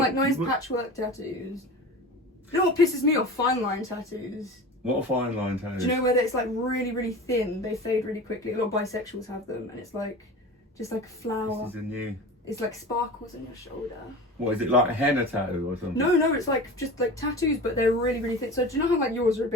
nice patchwork tattoos. You know what pisses me off? Fine line tattoos. What a fine line tattoo. Do you know where it's like really, really thin? They fade really quickly. A lot of bisexuals have them, and it's like just like a flower. This is a new. It's like sparkles on your shoulder. What is it, like a henna tattoo or something? No, it's like just like tattoos, but they're really, really thin. So do you know how like yours are a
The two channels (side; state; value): both; normal; correlation 0.34